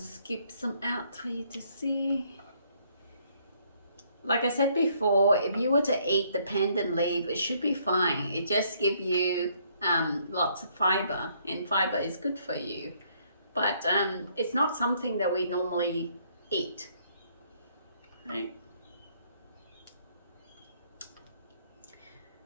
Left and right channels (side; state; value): both; inverted; correlation -0.67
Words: some out for you to see. like I said before, if you were to eat the pandan leaf, it should be fine. It just gives you lots of fiber, and fiber is good for you. But it's not something that we normally eat, right?